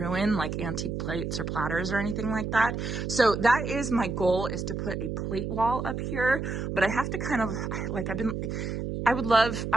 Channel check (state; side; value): noise; right; hum, 3 dB below the sound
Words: like antique plates or platters or anything like that. So that is my goal, is to put a plate wall up here, but I have to kind of like, I would